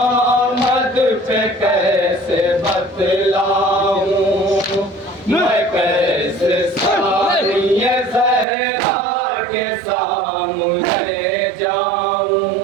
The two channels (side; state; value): left; drops out; at 8.5 s